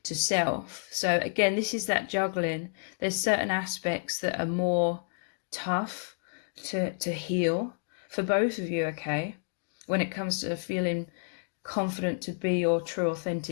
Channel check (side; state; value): right; silent; digital silence